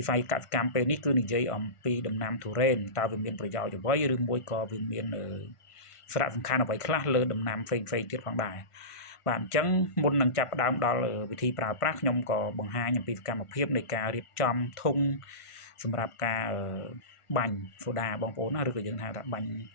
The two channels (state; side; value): late; right; 1.5 ms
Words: ិស័យកសិកម្មពេលនេះគឺនិយាយអំពីដំណាំទុរេនតើវាមានប្រយោជន៍អ្វីឬមួយក៏វាមានសារៈសំខាន់អ្វីខ្លះលើដំណាំផ្សេងៗទៀតផងដែរបាទអញ្ចឹងមុននឹងចាប់ផ្ដើមដល់វិធីប្រើប្រាស់ខ្ញុំក៏បង្ហាញអំពីសកម្មភាពនៃការរៀបចំធុងសម្រាប់ការបាញ់សូដាបងប្អូនណាឬក៏យើងហៅថាបាញ់